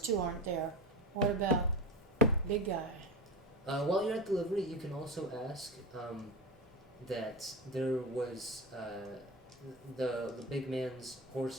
aren't there. What about big guy? While you're at delivery, you can also ask that there was the big man's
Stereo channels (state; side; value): normal; both; correlation 0.25